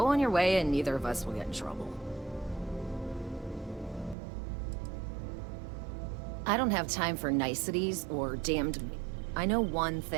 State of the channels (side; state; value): left; drops out; at 4.2 s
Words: on your way and neither of us will get in trouble. I don't have time for niceties or damned... I know one